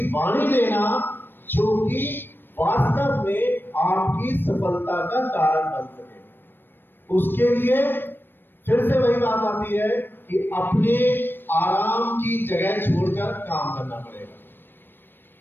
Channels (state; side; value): late; right; 0.096 ms